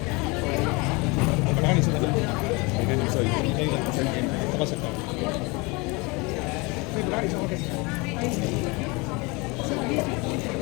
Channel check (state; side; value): quieter; right; 26.9 dB